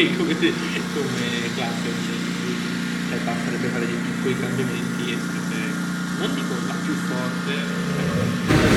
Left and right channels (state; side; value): identical; both; correlation 1.00